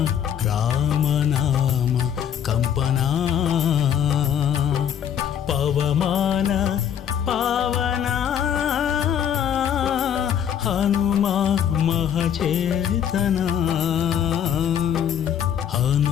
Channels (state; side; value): quieter; right; 9.1 dB